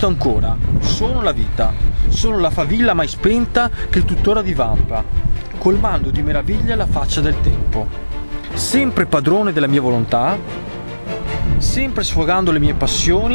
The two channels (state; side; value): inverted; both; correlation -1.00